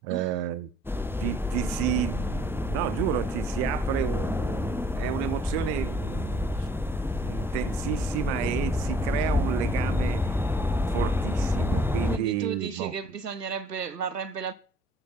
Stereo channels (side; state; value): both; normal; correlation 0.59